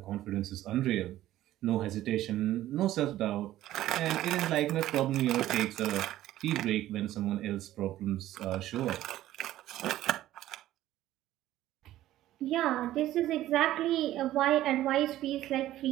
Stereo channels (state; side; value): quieter; left; 14.1 dB